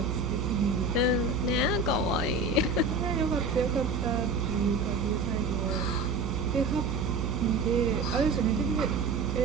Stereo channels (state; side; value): noise; right; hum, 2 dB below the sound